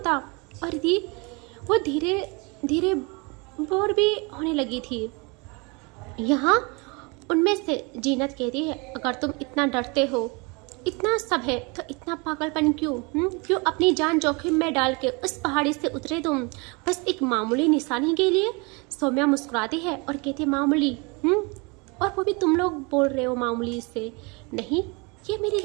और रिधि वो धीरे धीरे बोर भी होने लगी थी। यहाँ उनमें से जीनत कहती है अगर तुम इतना डरते हो, इतना सब है, तो इतना पागलपन क्यों? क्यों अपनी जान जोखिम में डाल के उस पहाड़ी से उतरे तुम बस एक मामूली निशानी के लिए? सौम्या मुस्कुराती है और कहती है मामूली? और वो भी तुम लोग बोल रहे हो मामूली से? नहीं, ये मेरी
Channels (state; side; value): quieter; left; 29.4 dB